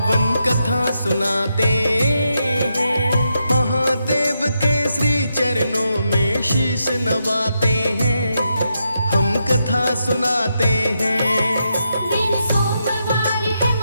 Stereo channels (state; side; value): inverted; both; correlation -0.83